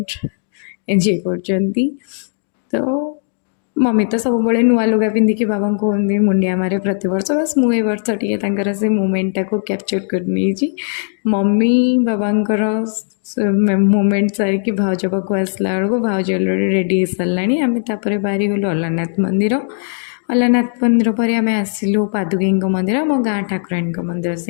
एंजॉय कर तो मम्मी तो सब बड़े नुआ लुगा पिंधिकी बाबा को मुंडिया मारे प्रति वर्ष बस मुझे वर्ष टे से मोमेंटा को कैप्चर कर नहीं। मम्मी बाबांकर मोमेंट सारिकी भाउज पाक आसला बेलू भाउज अलरेडी रेडी हो सारा आम बाहरी गलु अलारनाथ मंदिर। अलारनाथ मंदिर पर आम आसिलु पादुकी मंदिर मो गाँ ठाकुराणी मंदिर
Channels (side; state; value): right; silent; digital silence